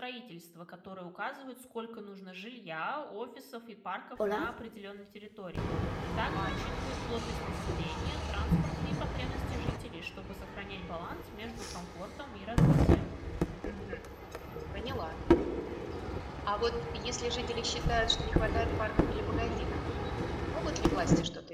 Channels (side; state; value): both; identical; correlation 1.00